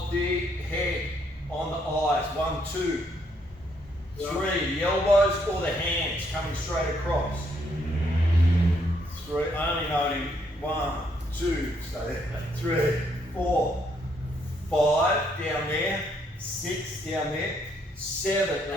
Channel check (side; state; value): both; normal; correlation 0.72